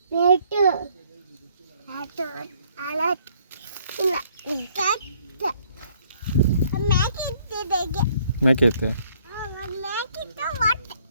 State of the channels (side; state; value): both; inverted; correlation -0.65